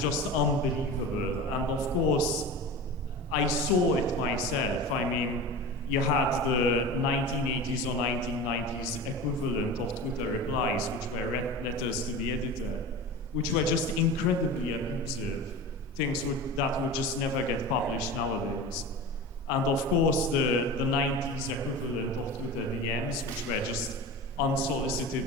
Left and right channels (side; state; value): both; normal; correlation 0.32